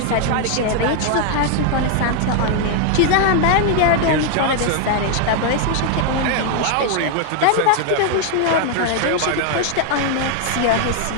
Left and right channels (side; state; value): both; different; correlation 0.00